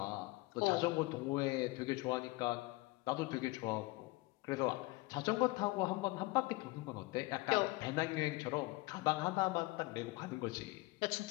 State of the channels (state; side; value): quieter; right; 22.4 dB